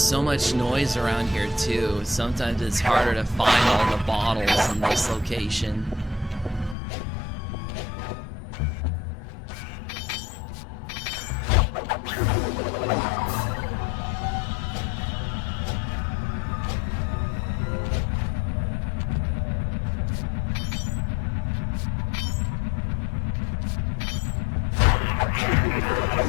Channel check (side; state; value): right; drops out; at 6.8 s